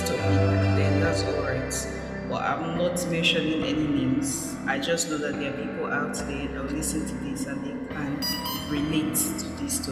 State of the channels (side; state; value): both; identical; correlation 1.00